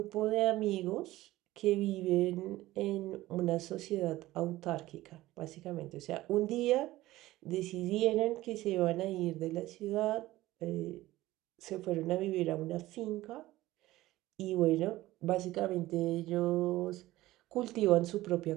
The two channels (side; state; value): left; quieter; 16.8 dB